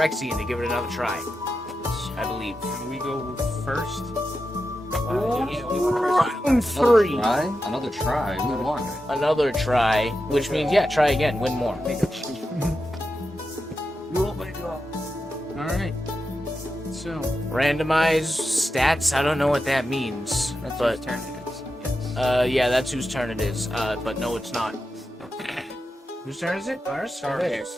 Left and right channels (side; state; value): both; normal; correlation 0.89